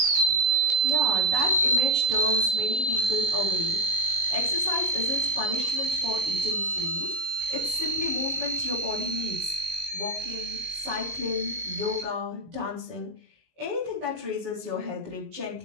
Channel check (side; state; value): left; late; 19 ms